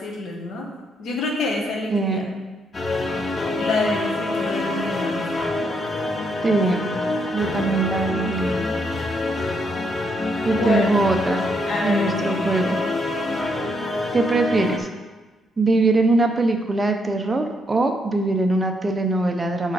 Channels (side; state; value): both; normal; correlation 0.75